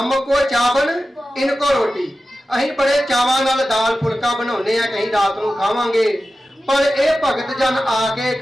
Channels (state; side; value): normal; both; correlation 0.94